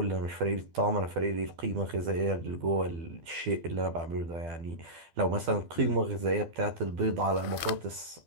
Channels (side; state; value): left; late; 12 ms